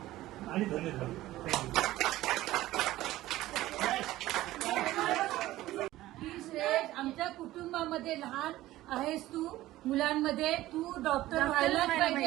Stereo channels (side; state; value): left; quieter; 16.0 dB